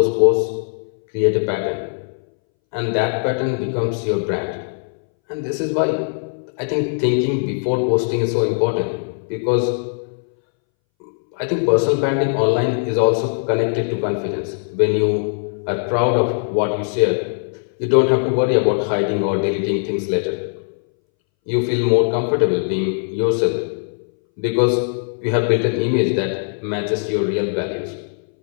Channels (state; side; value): silent; right; 64 dB below the other